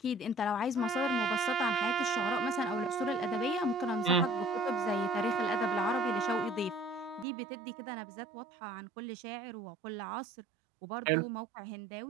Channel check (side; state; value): left; drops out; at 7.2 s